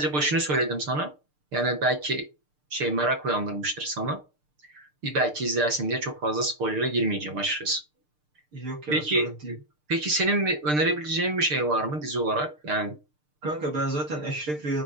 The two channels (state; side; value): late; left; 6.7 ms